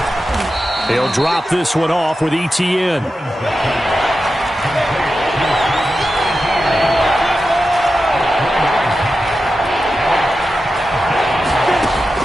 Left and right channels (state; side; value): normal; both; correlation 0.91